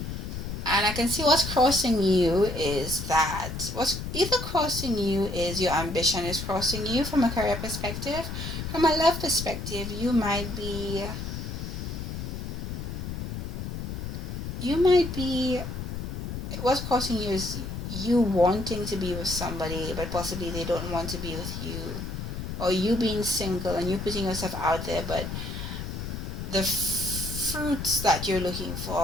And I can see what's crossing you is that what's either crossing you is your ambition is crossing you from a career perspective. From a love perspective, you might be what's crossing you is you wanting to be with somebody, but possibly they don't want to be with you, or you being single and you putting yourself out there, but the fruits that you're looking for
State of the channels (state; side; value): noise; left; rumble, 6 dB below the sound